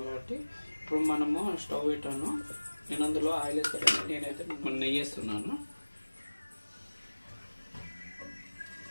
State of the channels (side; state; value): both; inverted; correlation -1.00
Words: కాబట్టి. ఇప్పుడు మనము స్టవ్ పెట్టాను, నేను అందులో ఆయిల్ వేస్తాను. నేనైతే నెయ్యి వేస్తున్నాను,